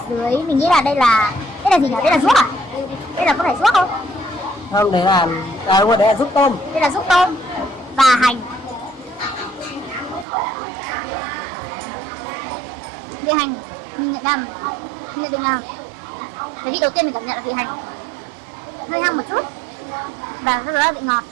dưới, mình nghĩ là đây là gì nhỉ? Đây là ruốc à? Đây là có phải ruốc không? không, đấy là đúng rồi, đấy là giúp tôm. Đây là ruốc tôm và hành. Vị hành mình nhận định là cái vị đầu tiên mình cảm nhận là vị hành hơi hăng một chút, và sau đó là vị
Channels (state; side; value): drops out; left; at 10.2 s